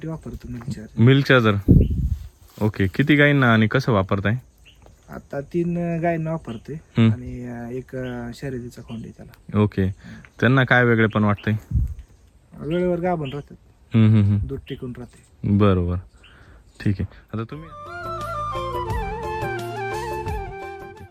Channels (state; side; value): identical; both; correlation 1.00